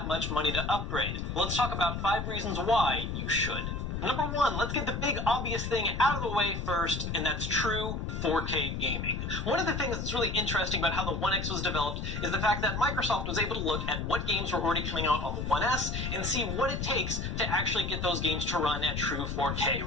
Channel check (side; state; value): left; noise; rumble, 3 dB below the sound